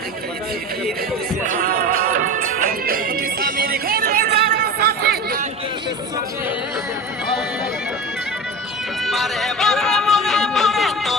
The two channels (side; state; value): both; normal; correlation 0.30